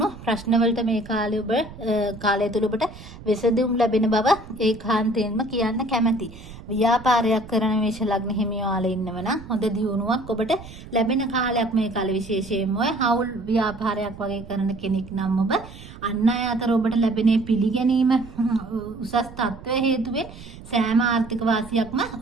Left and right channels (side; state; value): right; noise; rumble, 16 dB below the sound